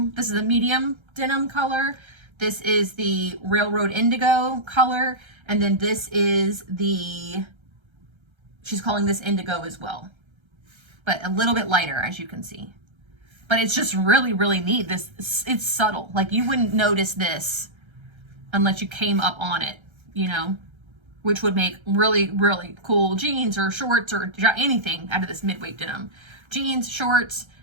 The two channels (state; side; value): late; left; 1.3 ms